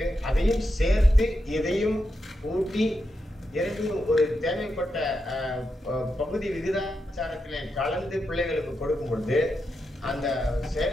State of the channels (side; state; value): both; normal; correlation 0.86